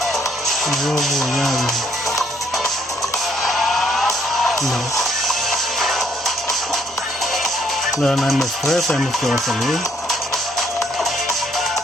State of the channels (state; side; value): normal; both; correlation 0.68